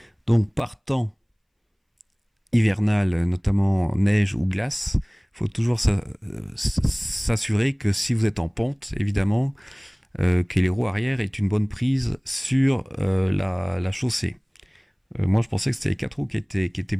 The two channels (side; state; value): both; identical; correlation 1.00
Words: Donc par temps hivernal, notamment neige ou glace, il faut toujours s'assurer que si vous êtes en pente, évidemment, que les roues arrière aient une bonne prise sur la chaussée. Moi je pensais que c'était les 4 roues qui étaient